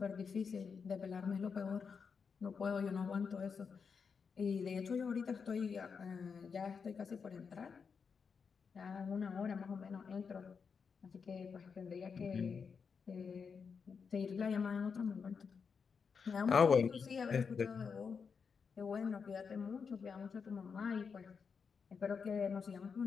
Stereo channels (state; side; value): quieter; right; 5.8 dB